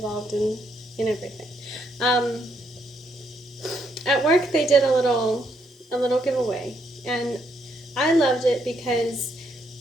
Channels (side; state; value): both; normal; correlation 0.75